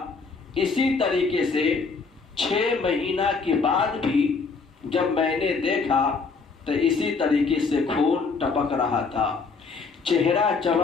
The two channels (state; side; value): quieter; right; 4.6 dB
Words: اسی طریقے سے 6 مہینہ کے بعد بھی جب میں نے دیکھا تو اسی طریقے سے خون ٹپک رہا تھا، چہرہ